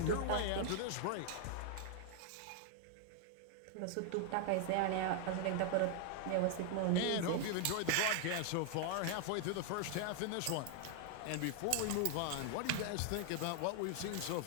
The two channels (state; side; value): different; both; correlation 0.00